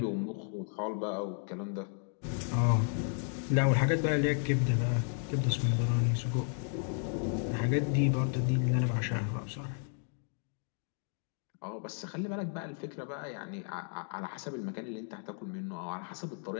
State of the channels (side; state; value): right; silent; 55 dB below the other